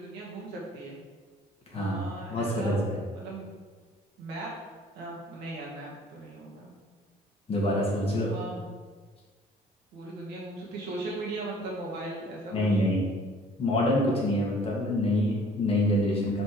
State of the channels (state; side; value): normal; both; correlation 0.54